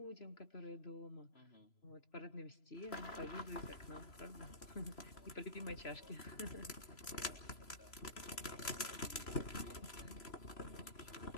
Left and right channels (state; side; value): late; right; 3.0 ms